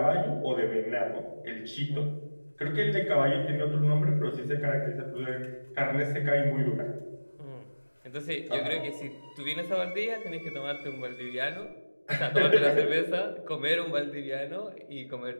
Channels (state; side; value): inverted; both; correlation -1.00